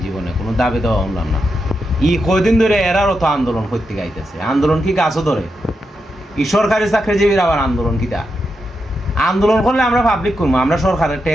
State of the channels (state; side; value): normal; both; correlation 0.86